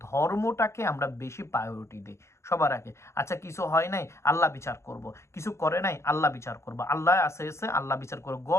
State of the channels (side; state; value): right; late; 0.13 ms